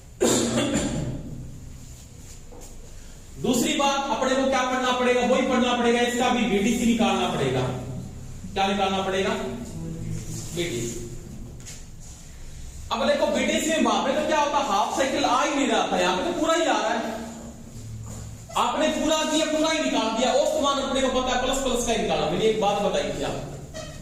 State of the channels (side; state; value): both; identical; correlation 1.00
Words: दूसरी बात, अपने को क्या पढ़ना पड़ेगा, वही पढ़ना पड़ेगा, इसका भी बीडीसी निकालना पड़ेगा। क्या निकालना पड़ेगा, बीडीसी। अब देखो बीडीसी में वहां पे तो क्या होता, हाफ साइकिल आ ही नहीं रहा था, यहां पे तो पूरा ही आ रहा है। आपने पूरा दिया, पूरा ही निकाल दिया। औसतमान अपने को पता है, प्लस प्लस का ही निकाला। मैंने एक बात बताई थी आप,